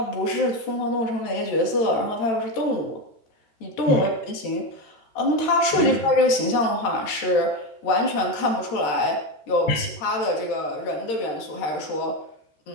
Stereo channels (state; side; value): late; right; 13 ms